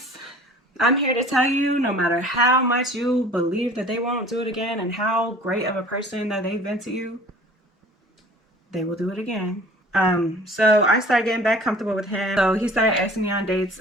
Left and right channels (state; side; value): normal; both; correlation 0.48